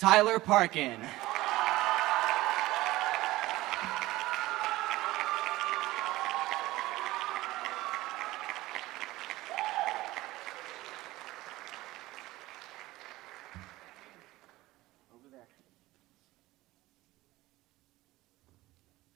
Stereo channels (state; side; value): quieter; left; 18.0 dB